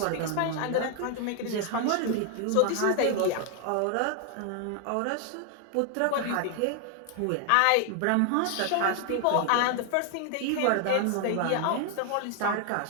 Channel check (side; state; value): both; different; correlation 0.00